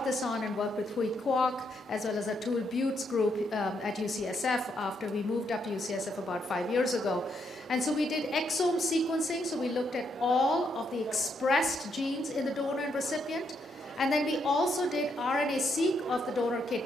this on and worked with Hui Kwok, as well as Atul Butte's group at UCSF after we moved up to UCSF about 5 years ago. And so we did exome sequencing, so we looked at all of the expressed genes in the donor and recipient, and then we also did RNA-seq of the donor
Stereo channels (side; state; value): both; normal; correlation 0.77